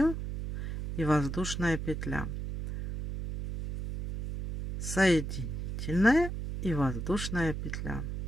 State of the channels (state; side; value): noise; right; hum, 5 dB below the sound